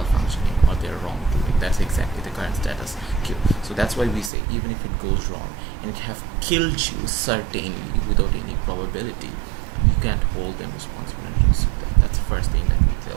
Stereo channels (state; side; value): drops out; left; at 4.3 s